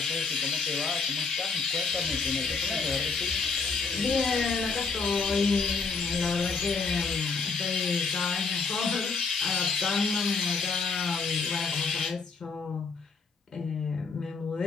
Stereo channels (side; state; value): right; quieter; 4.8 dB